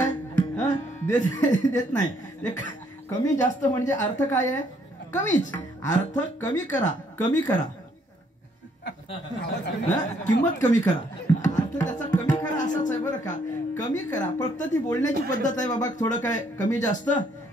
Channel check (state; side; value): normal; both; correlation 0.68